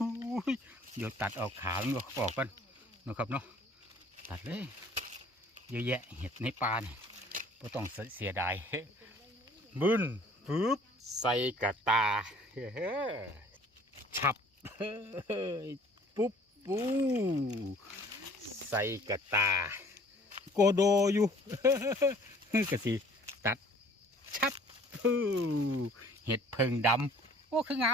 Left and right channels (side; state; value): both; normal; correlation 0.53